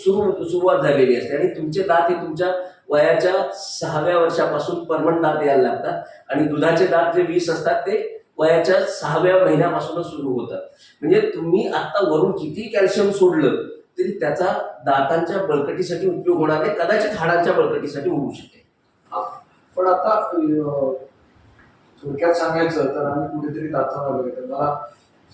झालेली असते. आणि तुमचे दात हे तुमच्या वयाच्या 6व्या वर्षापासून परमनंट दात यायला लागतात आणि दुधाचे दात जे 20 असतात ते वयाच्या 6व्या महिन्यापासूनच सुरू होतात. म्हणजे तुम्ही आता वरून किती कॅल्शियम सोडलं तरी त्याचा दातांच्या बळकटीसाठी उपयोग होणार नाही, कदाचित हाडांच्या बळकटीसाठी होऊ शकेल. पण आता थोडक्यात सांगायचं तर आम्ही कुठेतरी दातावर आलोय, तर मला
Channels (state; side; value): identical; both; correlation 1.00